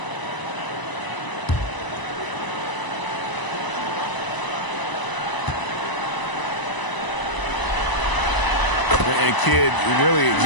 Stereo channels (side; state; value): right; late; 1.0 ms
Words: And Kidd, really